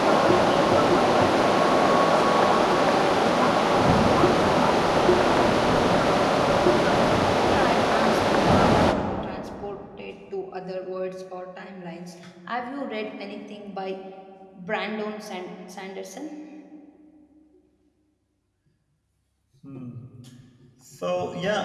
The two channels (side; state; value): both; identical; correlation 1.00